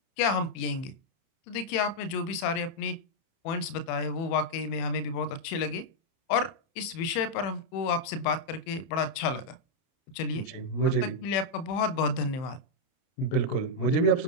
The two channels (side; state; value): right; late; 30 ms